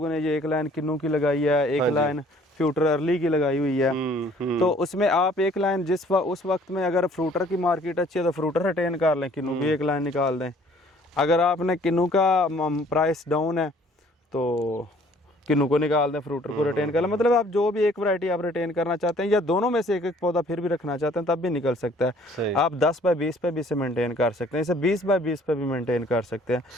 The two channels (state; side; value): normal; both; correlation 0.57